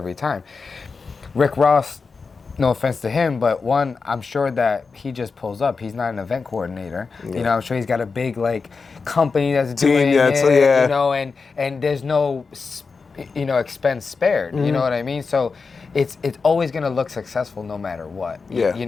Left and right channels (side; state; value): right; quieter; 4.7 dB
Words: time. Rick Ross, no offense to him, but one, I'm sure that he just pulls up. He's not an event coordinator. You know, I'm sure he's got a big like company that's doing it, you know, and there's no, you know, expense spared. You know what I mean? So it's always gonna look successful no matter what. You